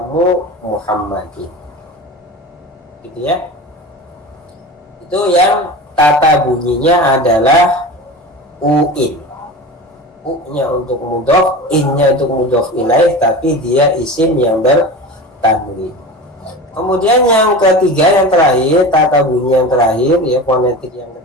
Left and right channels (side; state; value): both; normal; correlation 0.31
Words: Muhammadin, gitu, ya. Itu yang tata bunyinya adalah uin. U-nya untuk mudhof, in-nya untuk mudhof ilaih, tapi dia isim yang bertanwin. Kemudian yang ketiga, yang terakhir, tata bunyi yang terakhir, ya, fonetik yang